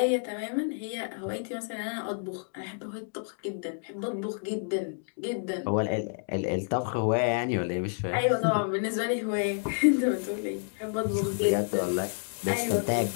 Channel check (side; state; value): right; silent; digital silence